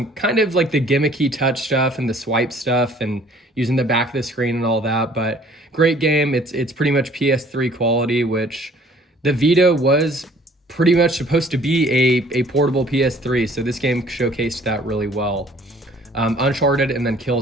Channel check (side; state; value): both; normal; correlation 0.55